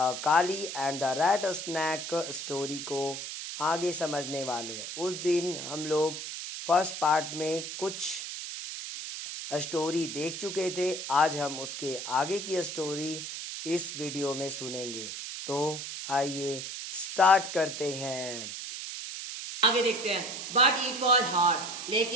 and the rat snake story को आगे समझने वाले हैं। उस दिन हम लोग फर्स्ट पार्ट में कुछ स्टोरी देख चुके थे। आज हम उसके आगे की स्टोरी इस वीडियो में सुनेंगे। तो आइए स्टार्ट करते हैं। आगे देखते हैं। बट इट वॉज हार्ड,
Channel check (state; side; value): noise; right; hiss, 7 dB below the sound